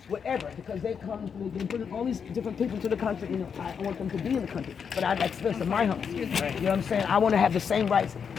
whatever, because they bring all these different people to the country. You know, I want them to be in the country, but I'd like to live in my home. You know what I'm saying? I want to have the same rights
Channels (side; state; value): right; quieter; 6.7 dB